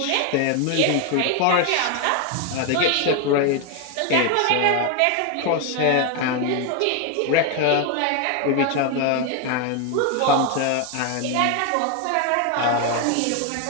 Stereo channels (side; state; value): both; different; correlation 0.01